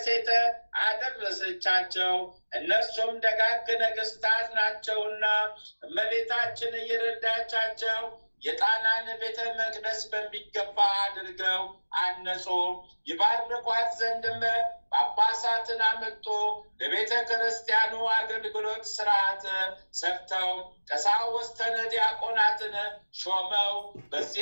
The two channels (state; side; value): inverted; both; correlation -1.00